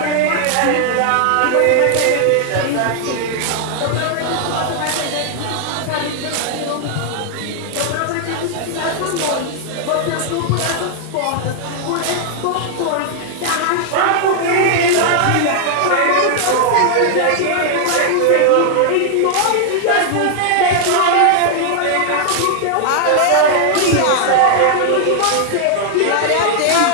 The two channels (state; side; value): different; both; correlation 0.00